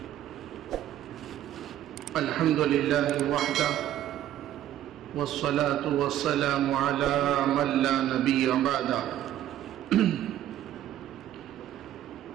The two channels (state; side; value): quieter; left; 12.2 dB